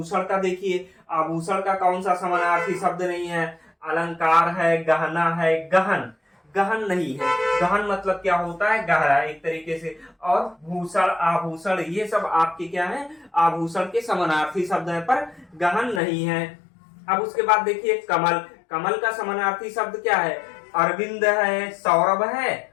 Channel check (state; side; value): drops out; right; at 16.0 s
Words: का देखिए, आभूषण का कौन सा समानार्थी शब्द नहीं है, अलंकार है, गहना है, गहन, गहन नहीं है। गहन मतलब क्या होता है, गहरा एक तरीके से। और भूषण, आभूषण, ये सब आपके क्या है, आभूषण के समानार्थी शब्द है, पर गहन नहीं है। अब उसके बाद देखिए कमल, कमल का समानार्थी शब्द क्या है, अरविंद है, सौरभ है,